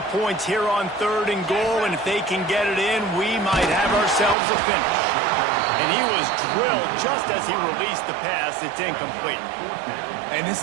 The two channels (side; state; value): left; drops out; at 4.4 s